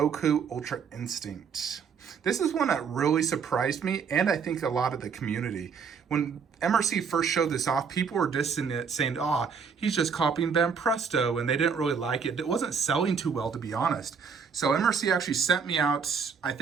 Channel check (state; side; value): quieter; left; 6.2 dB